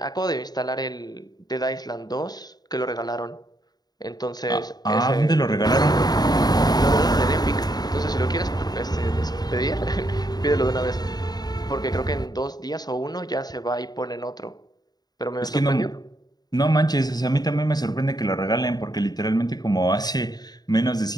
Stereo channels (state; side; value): late; right; 0.19 ms